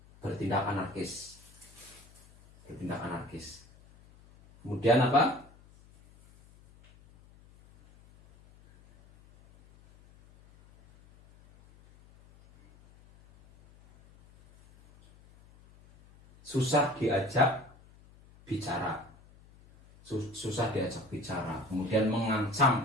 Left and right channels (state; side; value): noise; left; hum, 25 dB below the sound